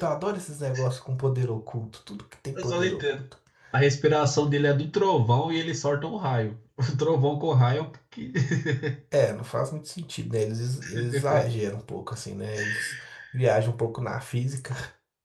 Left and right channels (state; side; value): identical; both; correlation 1.00